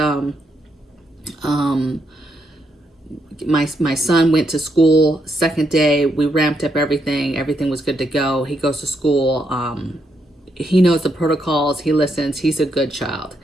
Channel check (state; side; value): normal; both; correlation 0.78